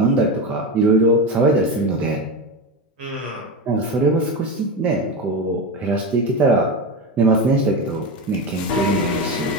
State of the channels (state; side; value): normal; both; correlation 0.18